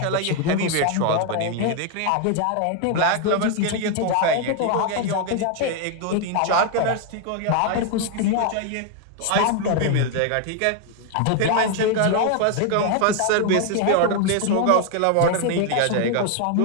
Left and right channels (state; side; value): different; both; correlation 0.01